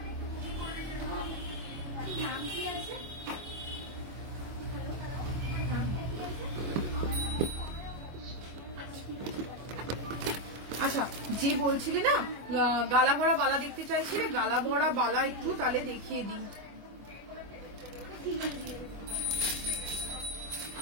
আচ্ছা, যে বলছিলে না গালা ভরা বালা দেখতে চাইছিলে, গালা ভরা বালা একটু তাহলে দেখিয়ে দিই।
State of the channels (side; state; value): left; late; 24 ms